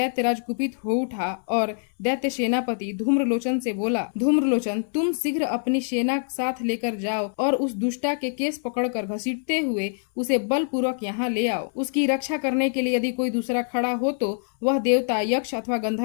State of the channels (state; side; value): silent; right; 62 dB below the other